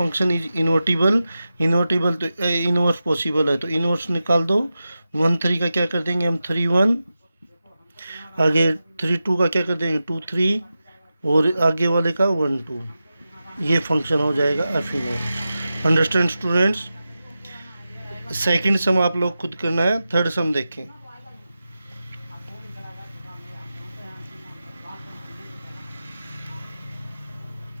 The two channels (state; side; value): inverted; both; correlation -0.92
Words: इज इन्वर्टिबल, इन्वर्टिबल तो इनवर्स पॉसिबल है, तो इनवर्स निकाल दो। 1 3 का क्या कर देंगे हम, 3 1, आगे 3 2 का क्या कर देंगे, 2 3, और आगे वाले का 1 2। ये फंक्शन हो जाएगा F inverse. Understand students? Second सम आप लोग खुद करना है, थर्ड सम देखें।